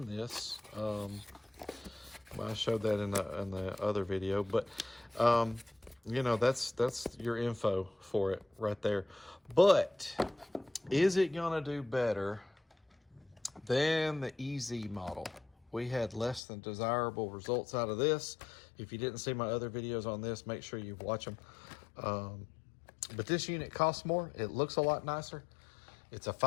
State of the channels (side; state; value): right; drops out; at 16.4 s